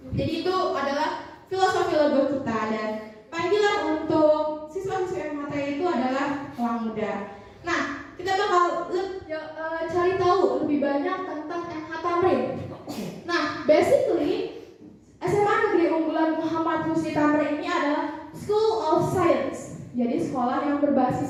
Jadi itu adalah filosofi logo kita dan panggilan untuk siswa-siswa MHT itu adalah elang muda. Nah, kita bakal cari tahu lebih banyak tentang MH Tamrin. Nah, basically SMA Negeri Unggulan Muhammad Husni Tamrin ini adalah School of Science. Jadi sekolah yang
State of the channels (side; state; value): both; identical; correlation 1.00